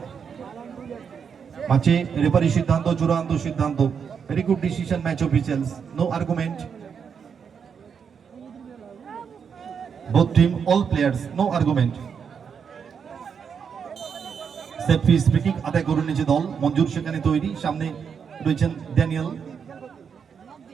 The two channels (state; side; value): quieter; left; 6.7 dB